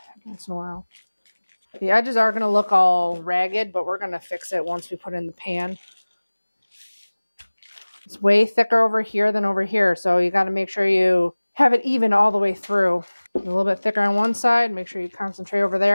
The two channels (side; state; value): both; inverted; correlation -1.00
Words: once in a while. The edges are going to look all ragged, but we're going to fix it once we put it in the pan. It's way thicker over here than over here, so you got to make sure you have it even all the way through. A little bit thicker on one side, make sure you concentrate over